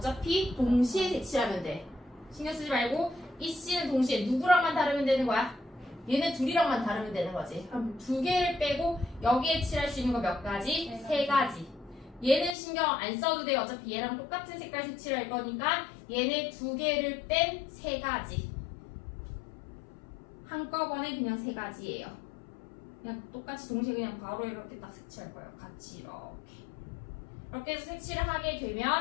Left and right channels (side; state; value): right; drops out; at 12.6 s